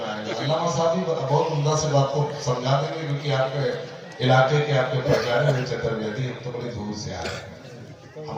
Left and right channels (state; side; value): identical; both; correlation 1.00